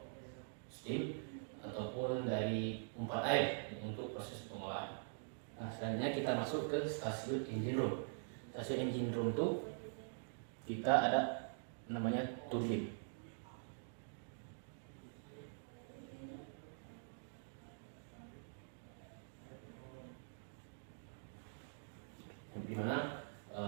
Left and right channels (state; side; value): silent; left; digital silence